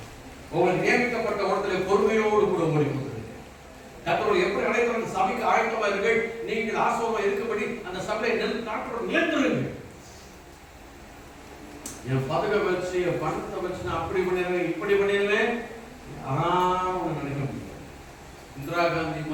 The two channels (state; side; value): identical; both; correlation 1.00